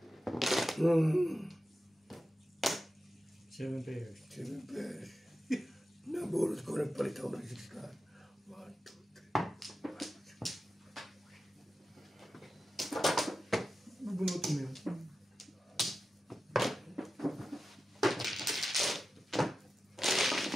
Seven pairs. Siyempre. Nabulot ko rin palit ako ng 6 card. 1, 2, 3. Nabunuto mo yun.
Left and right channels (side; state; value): both; normal; correlation 0.92